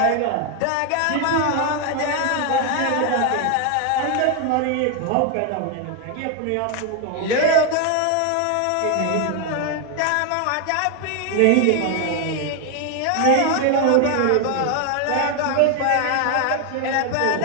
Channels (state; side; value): different; both; correlation 0.01